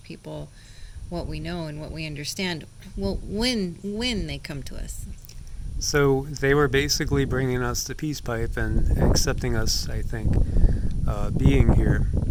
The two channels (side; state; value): both; identical; correlation 1.00